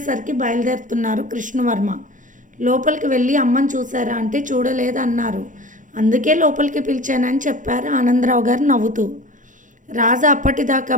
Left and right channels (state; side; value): late; left; 0.37 ms